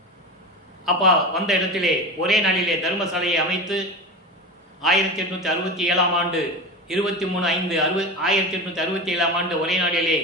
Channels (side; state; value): both; normal; correlation 0.26